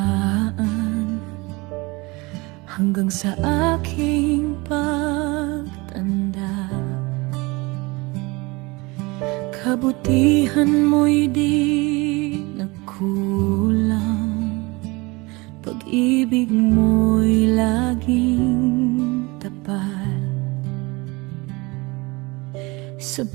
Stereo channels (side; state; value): left; quieter; 24.8 dB